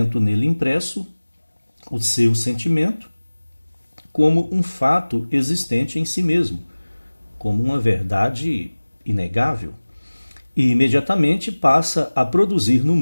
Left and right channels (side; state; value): both; inverted; correlation -1.00